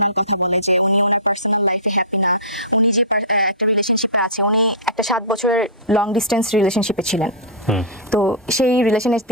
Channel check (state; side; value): normal; both; correlation -0.18